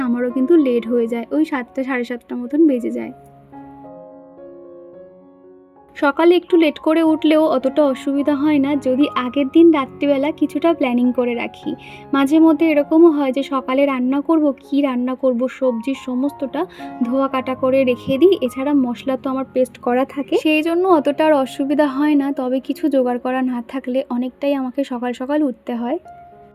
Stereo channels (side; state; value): both; identical; correlation 1.00